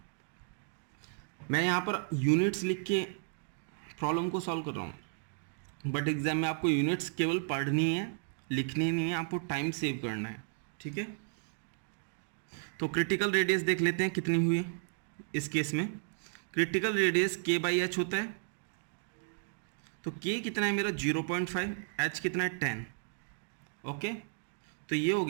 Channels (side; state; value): left; silent; 55 dB below the other